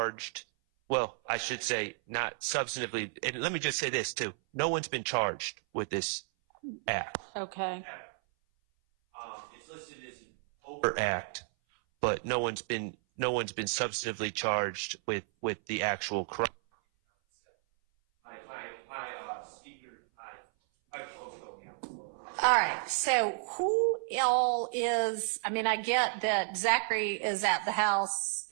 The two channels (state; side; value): silent; left; 56 dB below the other